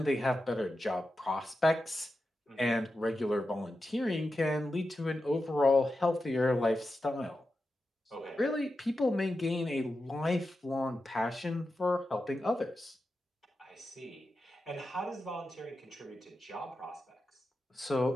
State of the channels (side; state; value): both; normal; correlation 0.90